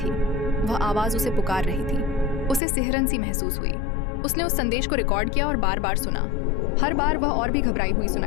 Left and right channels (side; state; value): right; drops out; at 2.6 s